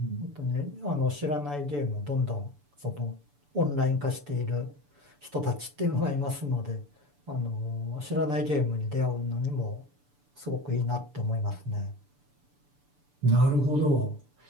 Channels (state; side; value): late; left; 6.9 ms